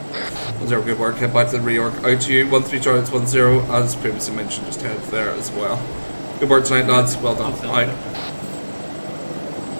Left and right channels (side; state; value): both; inverted; correlation -1.00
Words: 0, good work, head back to the reorg. Out to you, 1-3 Charlie, 1-0, as previously mentioned, just head there as well. Good work tonight, lads, well done. Out.